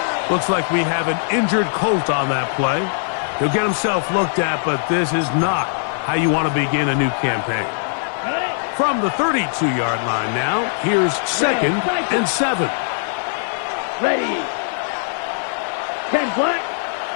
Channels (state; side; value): silent; right; digital silence